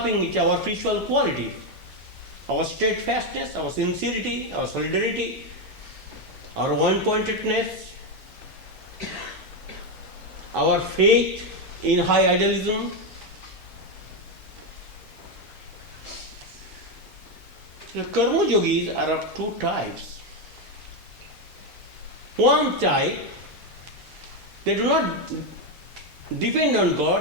our spiritual qualities, our steadfastness, our sincerity, our solidarity, our one-pointedness, our faith in high idealism. The karma yogis are of two types. One type, they do not depend on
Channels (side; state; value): both; normal; correlation 0.07